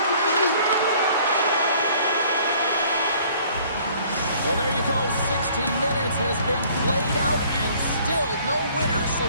Well, there you go. 60 minutes has been played out and still no winner. So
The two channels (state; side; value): inverted; both; correlation -0.56